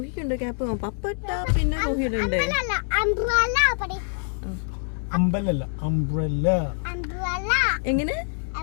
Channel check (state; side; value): silent; right; 62 dB below the other